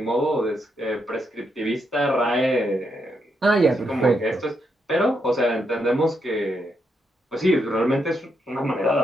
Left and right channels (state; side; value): normal; both; correlation 0.80